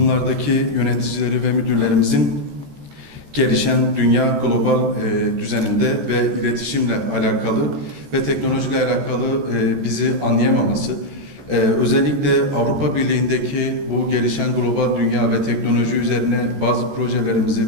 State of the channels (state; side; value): late; left; 14 ms